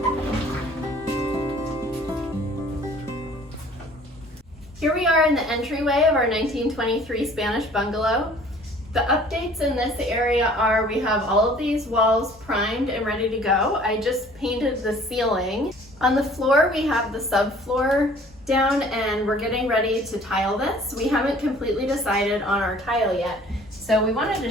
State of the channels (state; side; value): normal; both; correlation 0.52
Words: Here we are in the entryway of our 1923 Spanish Bungalow. The updates in this area are we have all of these walls primed and ready to go. I just painted the ceiling. On the floor we have the subfloor down and we're getting ready to tile this. We haven't completely decided on our tile yet. So we wanted to